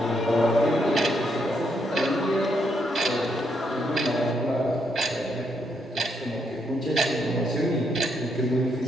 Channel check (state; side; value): normal; both; correlation 0.76